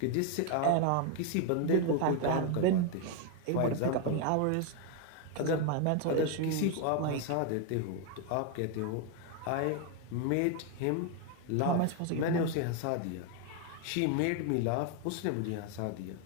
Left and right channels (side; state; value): both; different; correlation 0.01